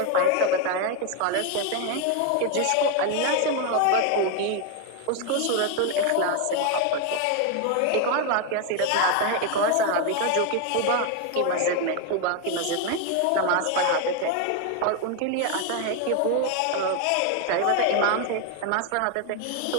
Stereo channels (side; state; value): both; different; correlation 0.01